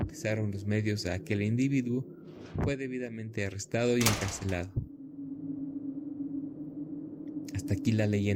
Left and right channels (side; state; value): both; identical; correlation 1.00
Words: los medios a aquel individuo, fue debidamente arrestado y encarcelado. Hasta aquí la